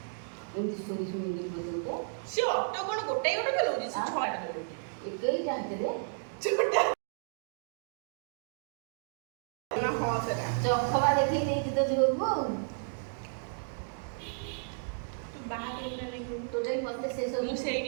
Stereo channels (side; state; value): left; silent; digital silence